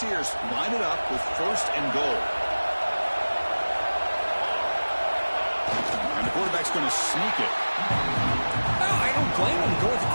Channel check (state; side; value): inverted; both; correlation -1.00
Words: line it up with 1st and goal. And the quarterback's going to sneak it. Well, I don't blame him. Go with the